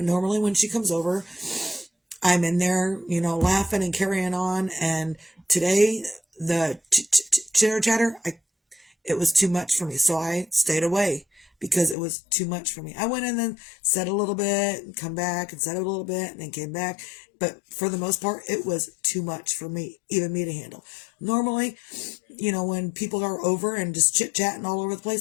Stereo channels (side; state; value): right; drops out; at 12.0 s